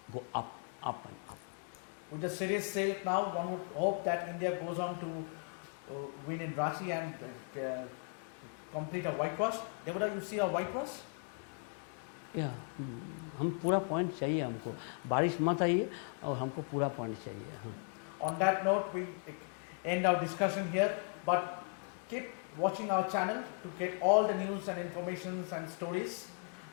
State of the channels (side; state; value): right; quieter; 39.3 dB